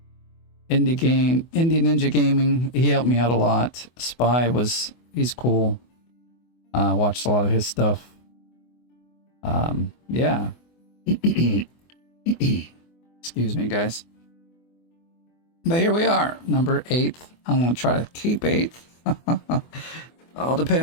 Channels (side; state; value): right; late; 24 ms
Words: Indie Ninja Gaming, he helped me out a lot. Spy he's cool. Watched a lot of his stuff. Yeah. Excuse me, guys. But here we are, number 8th. I'm going to try to keep 8th. All